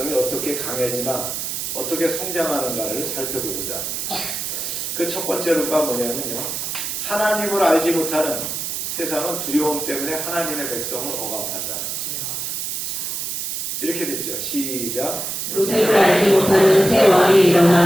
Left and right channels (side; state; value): right; noise; hiss, 4 dB below the sound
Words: 어떻게 강해지나 어떻게 성장하는가를 살펴보고자 합니다. 그 첫 번째로가 뭐냐면요. 하나님을 알지 못하는 세상은 두려움 때문에 하나님의 백성을 억압한다. 이렇게 됐죠. 시작. 요셉을 알지 못하는 새 왕이